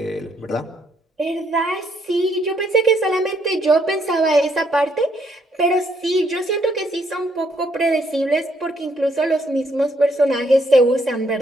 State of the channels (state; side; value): normal; both; correlation 0.71